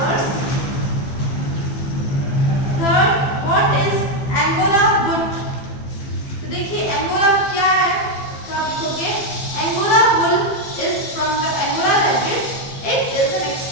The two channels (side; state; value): right; late; 15 ms